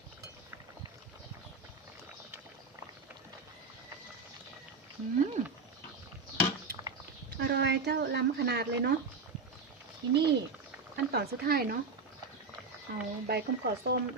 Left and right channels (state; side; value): quieter; left; 4.2 dB